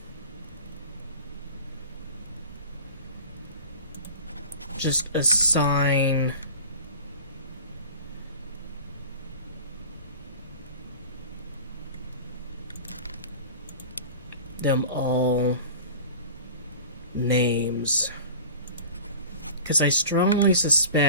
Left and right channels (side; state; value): both; inverted; correlation -0.37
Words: just assign them all names, because I strongly